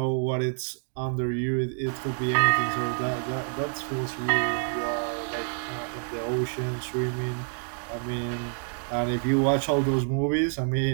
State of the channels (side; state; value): left; silent; 60 dB below the other